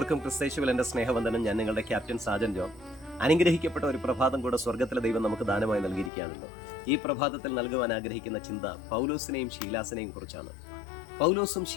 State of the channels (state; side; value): drops out; right; at 6.1 s